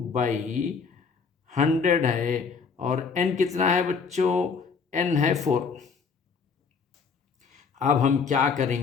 है, और n कितना है बच्चों, n है 4। अब हम क्या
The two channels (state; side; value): quieter; right; 5.4 dB